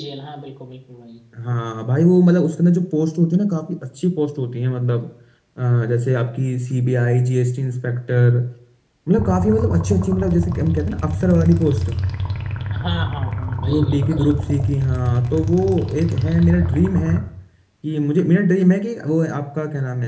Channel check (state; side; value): identical; both; correlation 1.00